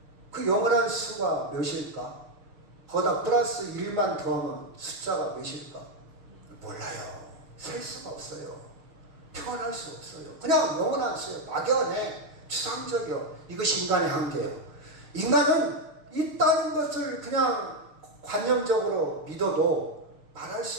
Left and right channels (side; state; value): left; late; 6.6 ms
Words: 그 영원한 수가 몇일까? 거기다 플러스 1만 더하면 숫자가 몇일까? 몰라요. 셀 수가 없어요. 표현할 수 없어요. 그냥 영원한 수예요. 막연해. 추상적이요. 이것이 인간의 한계예요. 인간은 있다는 것을 그냥 관념적으로 믿어도 말할